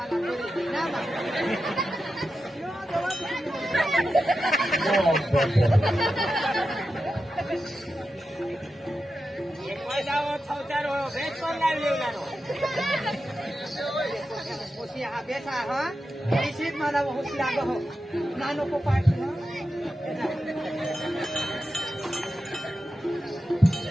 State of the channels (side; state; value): both; normal; correlation 0.90